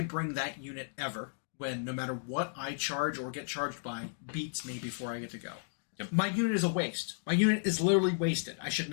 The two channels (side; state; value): right; silent; digital silence